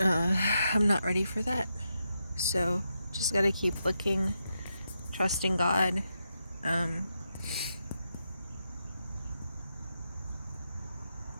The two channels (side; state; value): both; inverted; correlation -0.85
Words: not ready for that. So just gotta keep looking, trusting God.